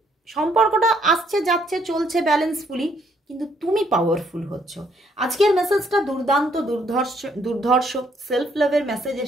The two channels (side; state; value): both; normal; correlation 0.69